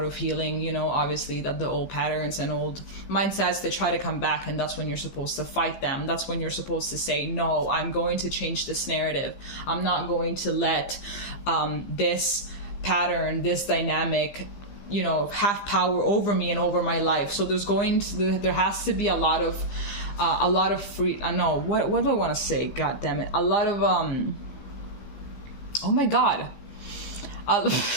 of healing, you know, obviously that the old patterns and old mindsets, they try to come back, and that's when you're supposed to fight them. That's when you're supposed to say, no, I'm going to change this narrative. I'm not going to let this pattern, this dynamic, you know, have power over me and over my life. So there has to be a lot of free, no, what do I want to say? God damn it. A lot of, oh my God. A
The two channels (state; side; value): late; right; 15 ms